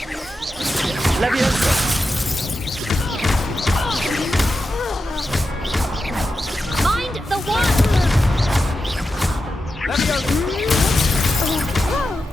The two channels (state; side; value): normal; both; correlation 0.90